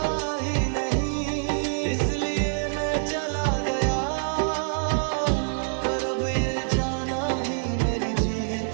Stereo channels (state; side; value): silent; left; digital silence